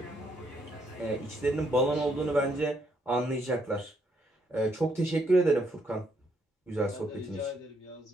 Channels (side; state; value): both; normal; correlation 0.73